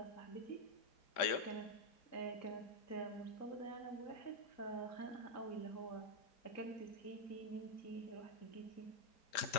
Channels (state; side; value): late; right; 5.0 ms